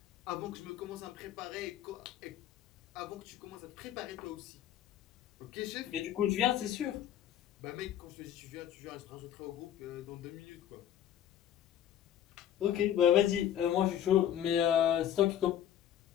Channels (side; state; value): right; quieter; 10.7 dB